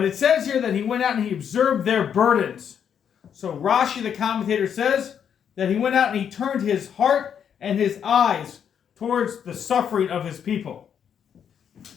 it says here that he went out and he observed their burdens. So Rashi, the commentator, says that he went out and he turned his heart and his eyes towards the suffering of his people.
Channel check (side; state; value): right; quieter; 8.2 dB